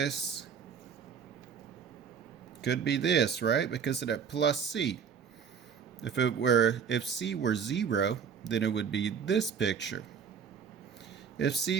could be this, right? Because of that plus c. If c were 0, then it would be this picture. If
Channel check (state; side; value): quieter; left; 7.0 dB